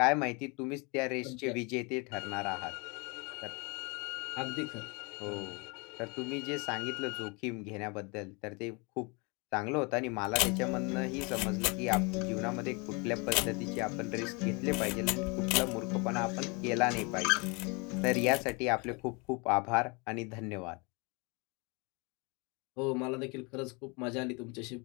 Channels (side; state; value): right; quieter; 30.4 dB